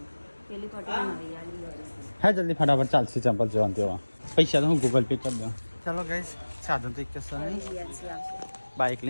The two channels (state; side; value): inverted; both; correlation -1.00